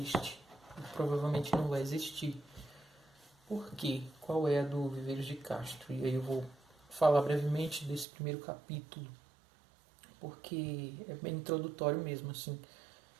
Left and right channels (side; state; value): left; drops out; at 8.1 s